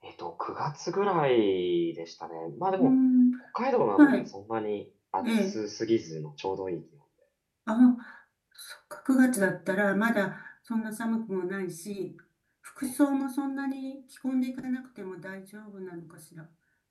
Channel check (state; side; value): identical; both; correlation 1.00